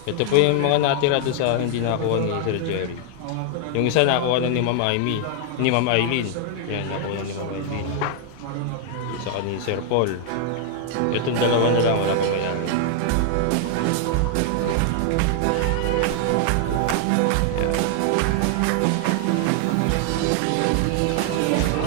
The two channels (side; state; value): both; different; correlation 0.00